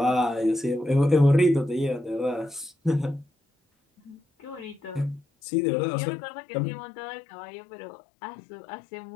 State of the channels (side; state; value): right; drops out; at 5.2 s